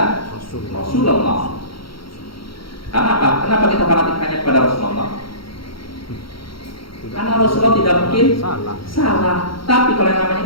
Rasulullah. Karena apa? Kenapa kita fanatik hanya kepada Rasulullah? Karena Rasulullah tidak mungkin salah. Tapi kalau yang namanya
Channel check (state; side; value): late; right; 0.74 ms